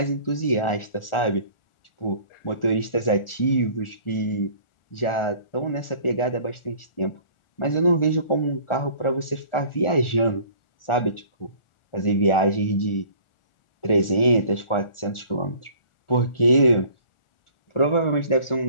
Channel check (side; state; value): right; late; 1.4 ms